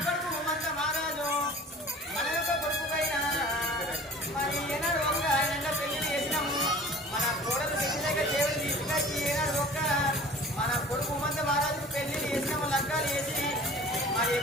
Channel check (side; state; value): both; normal; correlation 0.44